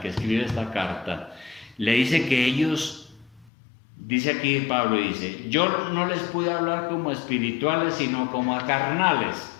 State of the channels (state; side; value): drops out; right; at 3.5 s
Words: que escribe esta carta, le dice que ellos... Dice aquí Pablo, dice, yo no les pude hablar como espirituales, sino como a carnales.